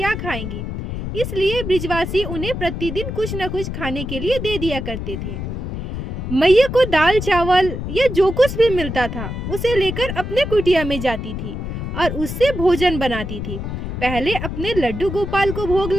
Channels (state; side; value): noise; left; rumble, 5 dB below the sound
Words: खाएंगी। इसलिए ब्रिजवासी उन्हें प्रतिदिन कुछ न कुछ खाने के लिए दे दिया करते थे। मैया को दाल चावल या जो कुछ भी मिलता था उसे लेकर अपने कुटिया में जाती थी और उससे भोजन बनाती थी। पहले अपने लड्डू गोपाल को भोग